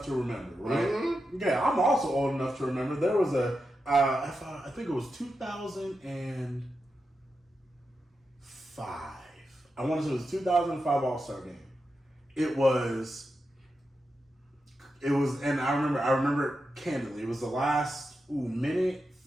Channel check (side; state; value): both; normal; correlation 0.88